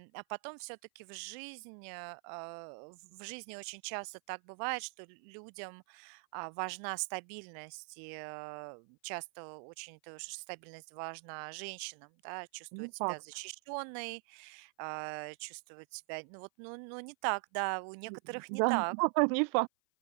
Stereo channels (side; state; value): left; silent; 50 dB below the other